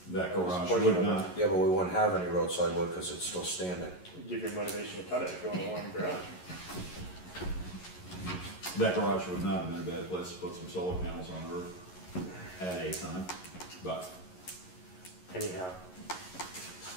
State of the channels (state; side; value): late; right; 11 ms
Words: That garage Portion would of not. Yeah, but we wouldn't have any roadside wood because it's still standing. Give your motivation to cut it if you want a warm garage. That garage would not have been a bad place to put some solar panels on the roof at a time, but Anyhow,